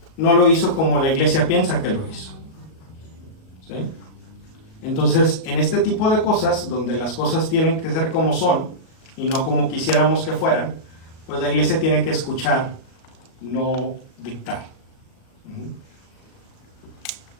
No lo hizo como la iglesia piensa que lo hizo. ¿Sí? Entonces, en este tipo de cosas, donde las cosas tienen que ser como son y no como quisiéramos que fueran, pues la iglesia tiene que escuchar, no dictar.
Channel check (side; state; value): right; late; 37 ms